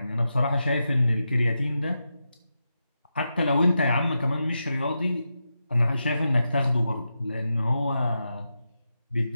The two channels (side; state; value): both; inverted; correlation -0.88